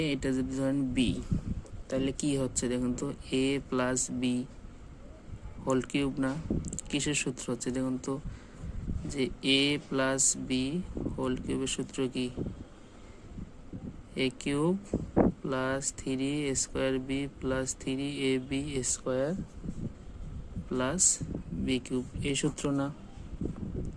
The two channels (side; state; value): both; identical; correlation 1.00